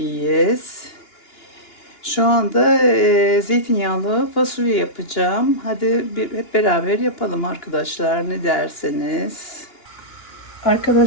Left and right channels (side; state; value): right; late; 2.9 ms